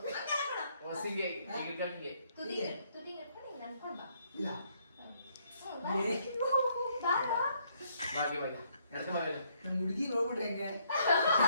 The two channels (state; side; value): inverted; both; correlation -0.70